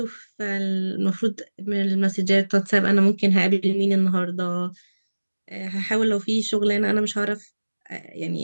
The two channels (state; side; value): inverted; both; correlation -1.00